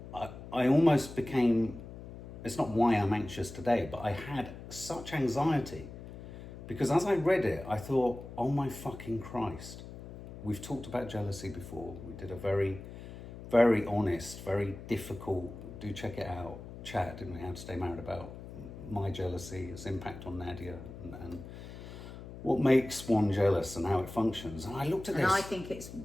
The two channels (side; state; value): left; noise; hum, 13 dB below the sound